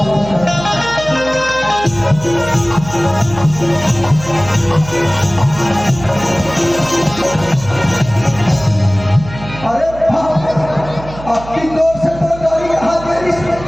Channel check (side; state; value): right; noise; hum, 14 dB below the sound